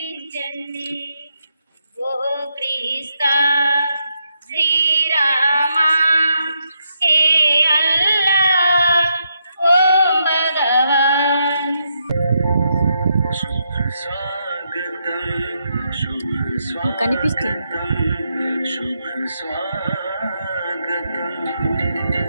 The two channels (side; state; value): both; inverted; correlation -0.80